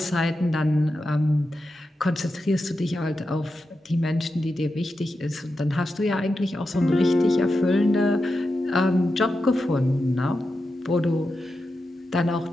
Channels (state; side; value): normal; both; correlation 0.89